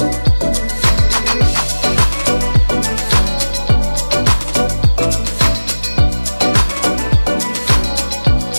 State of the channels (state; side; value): inverted; both; correlation -1.00